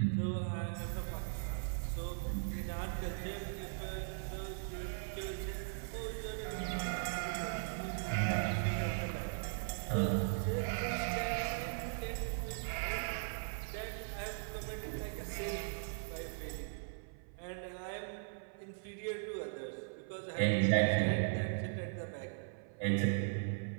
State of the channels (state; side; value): silent; left; 52 dB below the other